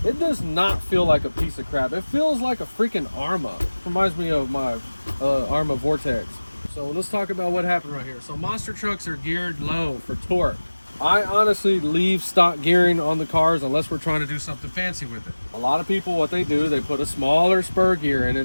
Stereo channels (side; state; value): both; inverted; correlation -1.00